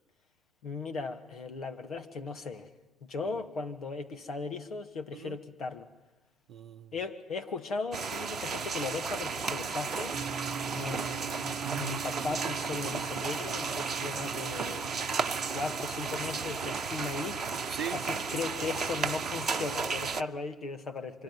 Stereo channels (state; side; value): normal; both; correlation 0.65